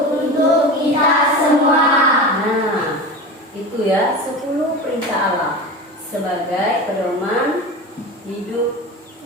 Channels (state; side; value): normal; both; correlation 0.29